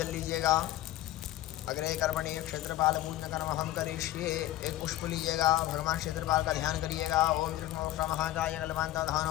लीजिएगा। अग्रे कर्मणि क्षेत्रपाल पूज्य कर्म हम करिष्ये। एक पुष्प लीजिएगा, भगवान क्षेत्रपाल का ध्यान करिएगा। ओम कृष्ण महाकाय कलवांत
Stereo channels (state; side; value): quieter; right; 15.0 dB